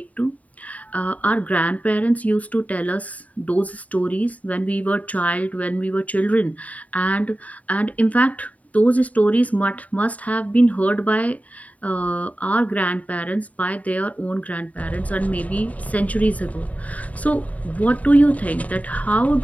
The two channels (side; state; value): right; late; 0.070 ms